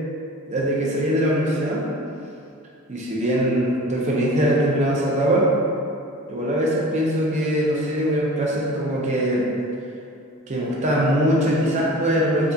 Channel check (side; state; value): both; normal; correlation 0.40